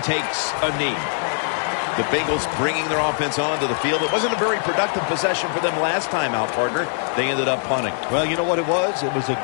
takes a knee. The Bengals bringing their offense onto the field. It wasn't a very productive possession for them last time out, partner. They ended up punting. Well, you know what it was? It was a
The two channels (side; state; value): right; silent; 63 dB below the other